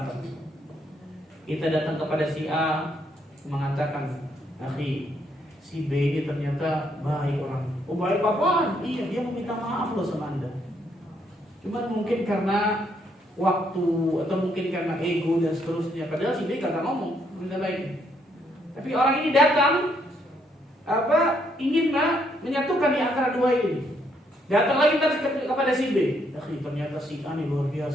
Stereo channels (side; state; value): both; normal; correlation 0.72